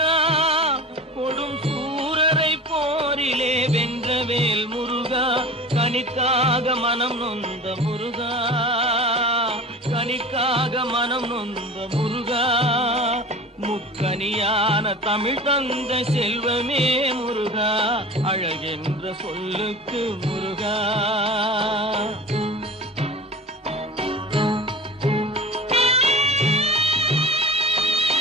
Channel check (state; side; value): normal; both; correlation 0.35